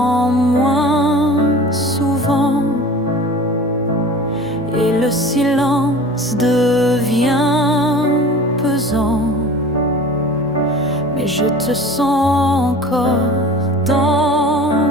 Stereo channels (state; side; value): normal; both; correlation 0.40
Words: moins souvent, et le silence devient pesant. Mais je te sens encore dans